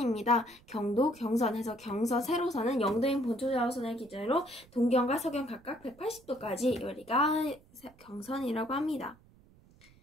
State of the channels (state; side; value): noise; right; rumble, 27 dB below the sound